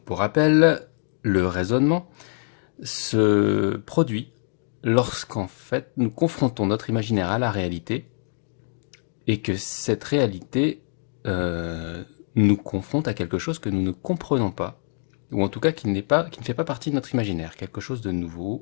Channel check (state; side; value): silent; right; 60 dB below the other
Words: pour rappel, le raisonnement se produit lorsqu'en fait nous confrontons notre imaginaire à la réalité et que cette réalité nous confronte à quelque chose que nous ne comprenons pas, ou en tout cas qui ne fait pas partie de notre imaginaire, quelque chose de